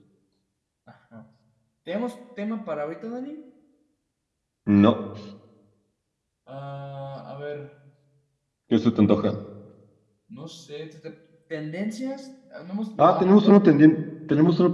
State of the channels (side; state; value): both; identical; correlation 1.00